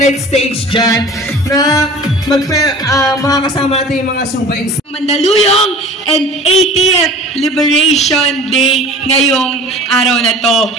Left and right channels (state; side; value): normal; both; correlation 0.42